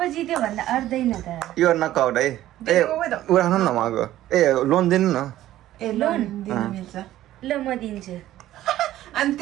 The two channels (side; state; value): left; quieter; 13.9 dB